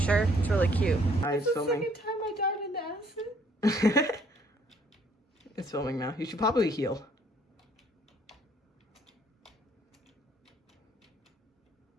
It's really cute. It's the filming. second time I died in the acid. It's filming now. You should probably heal.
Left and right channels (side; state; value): both; normal; correlation 0.63